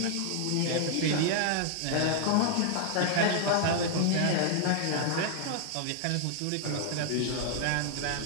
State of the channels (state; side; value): different; both; correlation 0.00